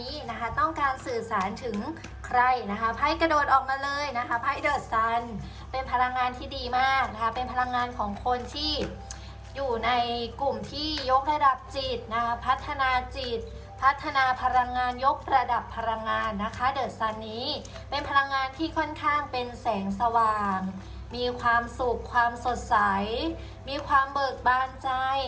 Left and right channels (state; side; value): identical; both; correlation 1.00